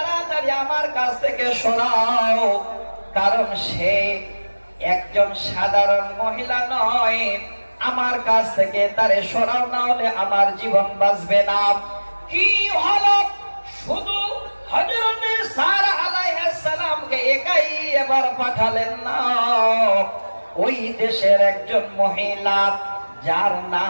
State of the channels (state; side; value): inverted; both; correlation -1.00